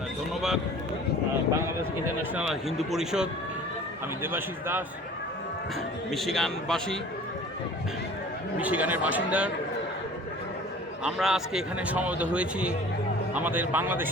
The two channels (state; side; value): normal; both; correlation 0.45